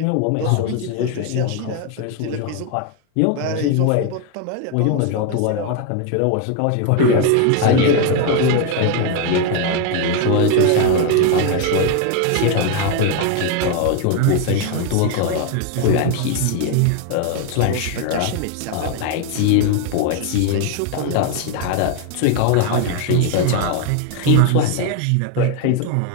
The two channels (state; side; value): different; both; correlation 0.01